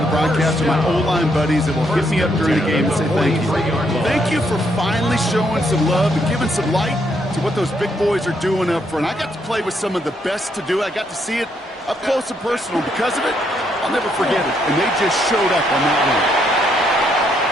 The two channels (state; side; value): normal; both; correlation 0.74